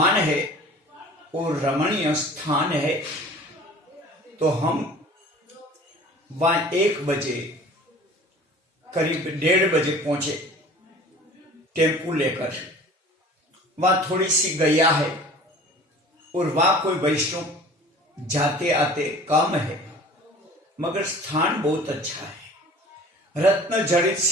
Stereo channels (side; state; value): both; normal; correlation 0.44